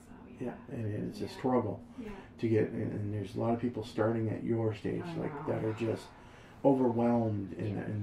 yeah. Yeah, and it's a struggle to get, and there's a lot of people starting at your stage, that are just overwhelmed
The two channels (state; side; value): identical; both; correlation 1.00